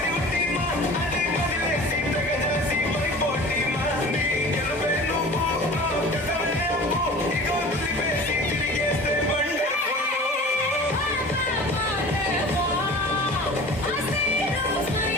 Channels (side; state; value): both; normal; correlation 0.40